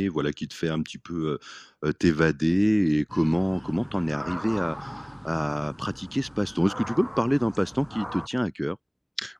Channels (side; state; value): both; identical; correlation 1.00